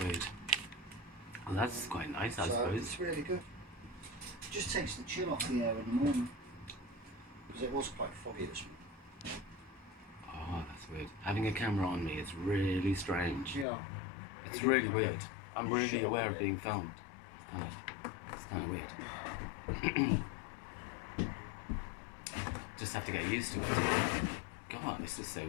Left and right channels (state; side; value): drops out; right; at 13.7 s